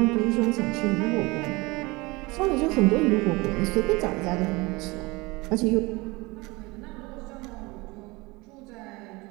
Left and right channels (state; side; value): quieter; left; 23.9 dB